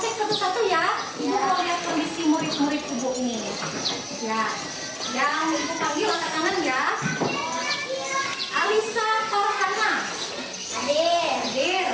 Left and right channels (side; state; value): both; identical; correlation 1.00